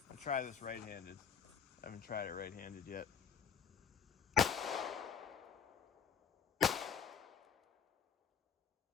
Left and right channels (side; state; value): right; quieter; 7.4 dB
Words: I'll try this right-handed. I haven't tried it right-handed yet.